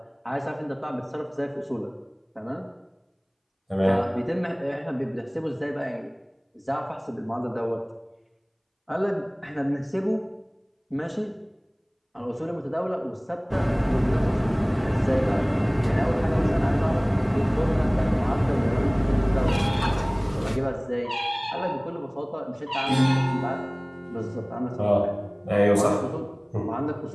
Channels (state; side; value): identical; both; correlation 1.00